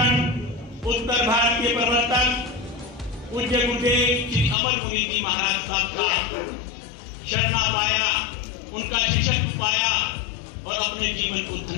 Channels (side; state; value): right; drops out; at 4.5 s